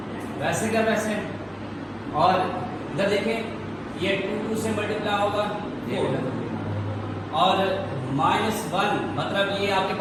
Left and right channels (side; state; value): both; identical; correlation 1.00